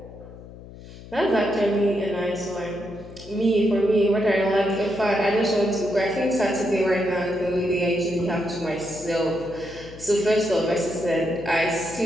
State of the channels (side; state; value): left; noise; hum, 17 dB below the sound